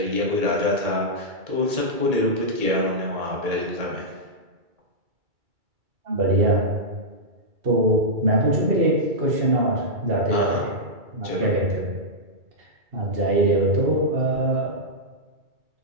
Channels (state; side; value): late; left; 2.3 ms